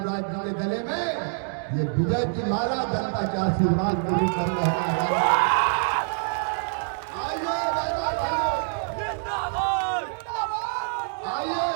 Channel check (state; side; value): silent; left; digital silence